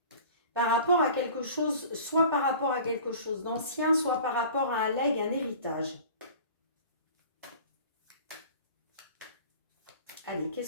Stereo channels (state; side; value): inverted; both; correlation -0.43